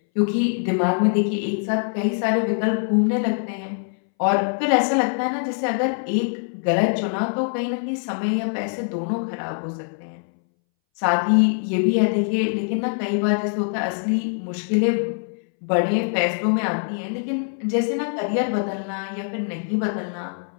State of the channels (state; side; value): silent; right; 63 dB below the other